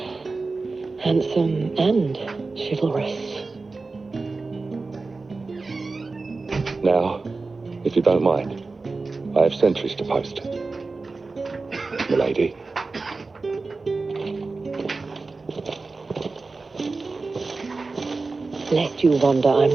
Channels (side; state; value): left; quieter; 3.8 dB